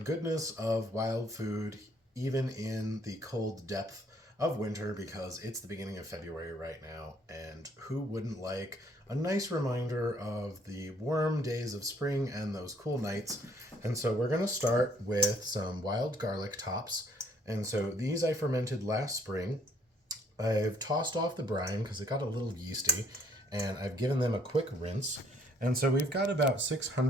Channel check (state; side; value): normal; both; correlation 0.63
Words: of wild food even in the cold depth of winter, because it's the beginning of February right now, and who wouldn't like a nice reminder of the warm days of spring and those cool nights. And so we're going to start with some wild garlic tops. And so these I fermented last spring. I've tossed off the brine because it got a little yeasty, and I've given them a quick rinse. And so we've got about